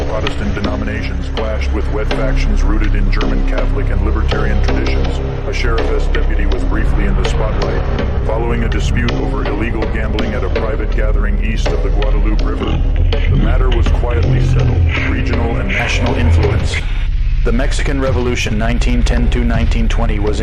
Protestant denominations, clashed with wet factions rooted in German Catholic and libertarian traditions. A sheriff's deputy was briefly in the spotlight, following a dispute over illegal gambling at a private gathering east of the Guadalupe River. The matter was quietly settled. Regional and national influence. The Mexican Revolution 1910–1920 was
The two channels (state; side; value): identical; both; correlation 1.00